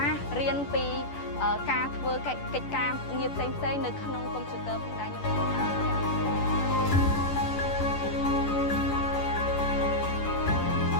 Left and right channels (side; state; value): right; late; 11 ms